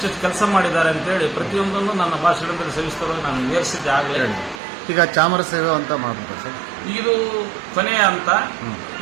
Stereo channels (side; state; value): left; drops out; at 4.6 s